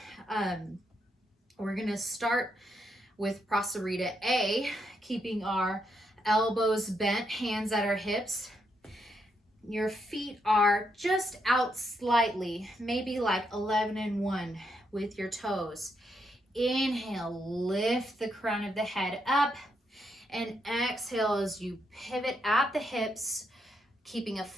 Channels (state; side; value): normal; both; correlation 0.79